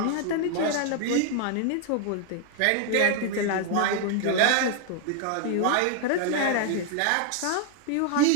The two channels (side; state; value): both; different; correlation 0.00